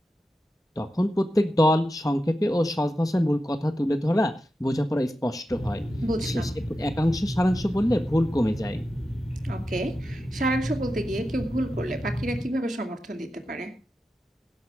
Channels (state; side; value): normal; both; correlation 0.90